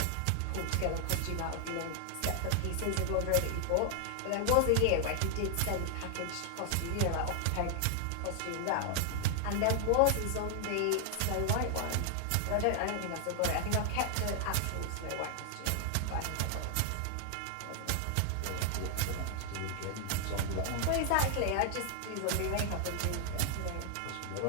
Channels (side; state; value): both; different; correlation 0.00